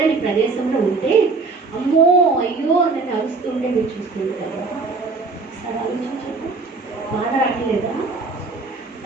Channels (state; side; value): quieter; left; 4.1 dB